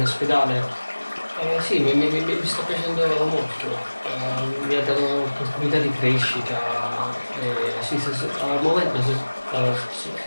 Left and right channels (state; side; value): inverted; both; correlation -1.00